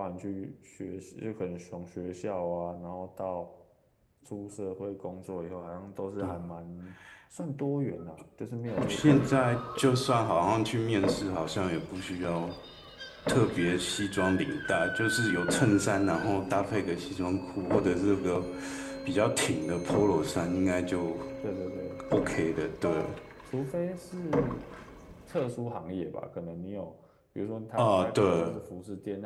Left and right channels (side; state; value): both; identical; correlation 1.00